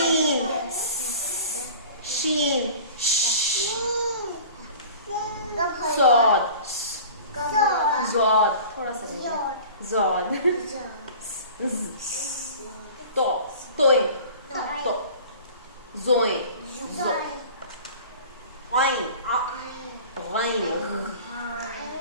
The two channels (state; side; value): inverted; both; correlation -0.42